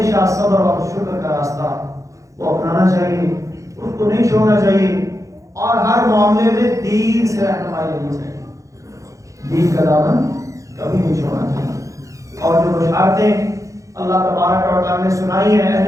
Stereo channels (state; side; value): late; left; 0.15 ms